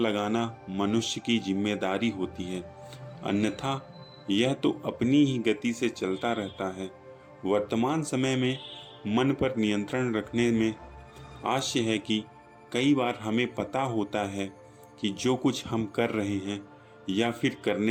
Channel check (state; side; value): identical; both; correlation 1.00